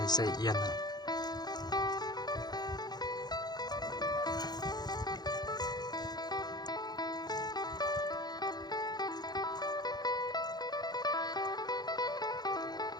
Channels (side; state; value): right; late; 0.20 ms